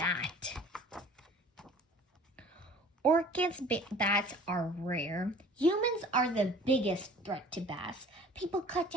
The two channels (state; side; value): normal; both; correlation 0.47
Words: Orchids bats are rare. Humans are the biggest threat to bats. People cut